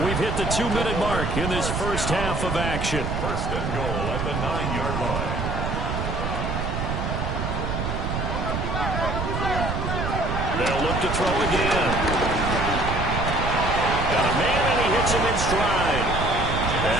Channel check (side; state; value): right; noise; rumble, 2 dB below the sound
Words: we've hit the 2-minute mark in this first half of action. 1st and goal at the 9-yard line. They'll look to throw again. Got a man, and he hits him in stride.